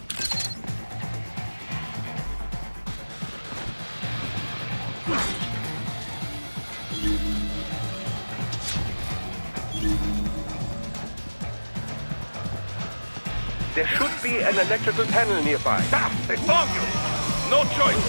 There should be an electrical panel nearby. Stop! They found you! No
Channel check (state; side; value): inverted; both; correlation -1.00